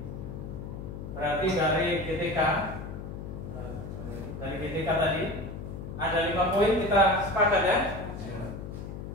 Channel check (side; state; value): left; noise; hum, 8 dB below the sound